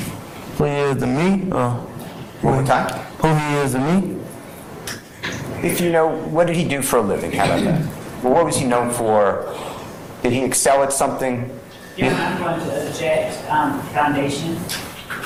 Who he is to me? One more time. Who he is to me? If you know, what did he do for a living? How about that? Well, what was he known for? Did he excel at something? Your Honor, I'm going to object foundation.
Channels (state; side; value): identical; both; correlation 1.00